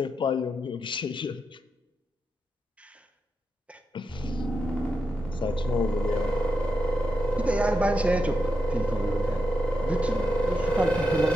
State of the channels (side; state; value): both; normal; correlation 0.86